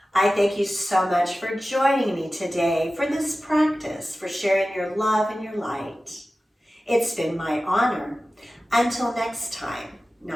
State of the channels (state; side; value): normal; both; correlation 0.95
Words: I thank you so much for joining me today for this practice, for sharing your love and your light. It's been my honor. Until next time,